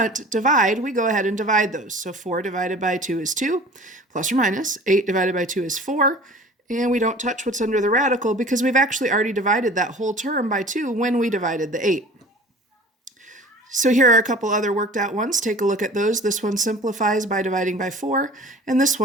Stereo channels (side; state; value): both; normal; correlation 0.43